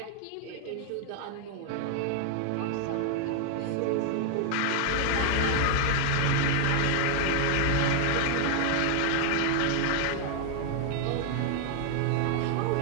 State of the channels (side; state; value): both; different; correlation 0.00